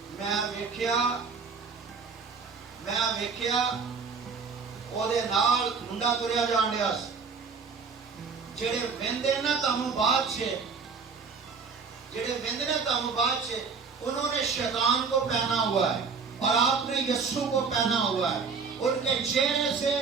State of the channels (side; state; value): left; quieter; 5.2 dB